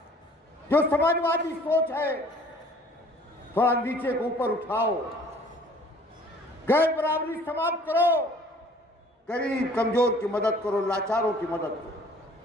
जो समाजवादी सोच है, थोड़ा नीचे को ऊपर उठाओ, गैर बराबरी समाप्त करो, गरीब कमजोर की मदद करो, लाचारों की मदद करो।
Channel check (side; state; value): both; normal; correlation 0.53